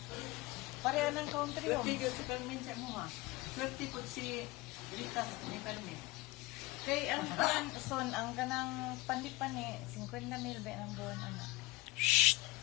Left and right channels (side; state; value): right; quieter; 20.0 dB